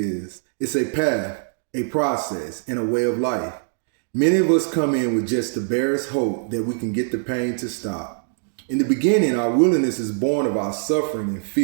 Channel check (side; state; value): left; silent; digital silence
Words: It's a path, a process, and a way of life. Many of us come in with just the barest hope that we can get the pain to stop. In the beginning, our willingness is born of our suffering and